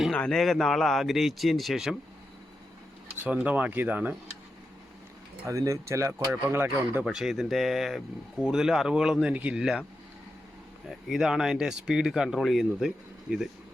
അനേക നാൾ ആഗ്രഹിച്ചതിന് ശേഷം സ്വന്തമാക്കിയതാണ്. അതിന് ചില കുഴപ്പങ്ങളൊക്കെ ഉണ്ട്, പക്ഷേ ഇതിൻ്റെ കൂടുതൽ അറിവുകളൊന്നും എനിക്കില്ല. ഇതാണ് അതിൻ്റെ സ്പീഡ് കൺട്രോൾ ചെയ്യുന്നത്. ഇത്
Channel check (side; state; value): both; normal; correlation 0.88